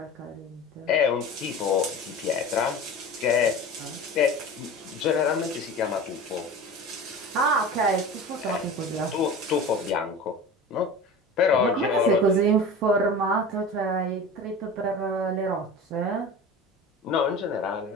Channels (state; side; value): normal; both; correlation 0.33